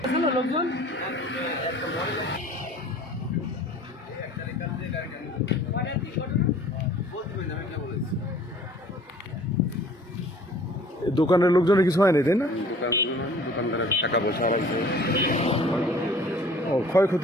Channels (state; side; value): normal; both; correlation 0.50